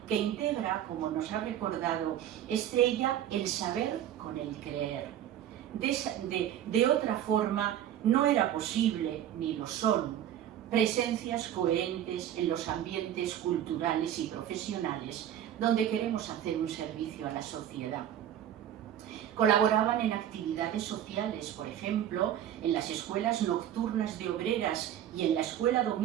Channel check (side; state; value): left; quieter; 10.9 dB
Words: que integra, como nos ha recordado Estrella, el saber con el creer. De otra forma, no era posible, ni lo son, presencias coherentes en los ambientes culturales y profesionales donde queremos hacer un servicio a la sociedad. Colaboraban en actividades sociales, por ejemplo, en las escuelas nocturnas de obreras y en la escuela